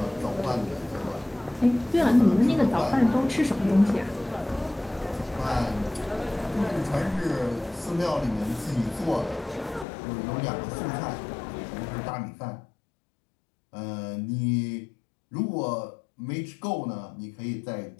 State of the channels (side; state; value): right; drops out; at 9.9 s